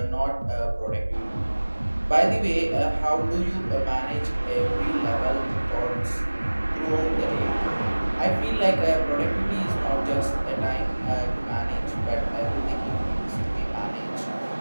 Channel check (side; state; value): both; inverted; correlation -1.00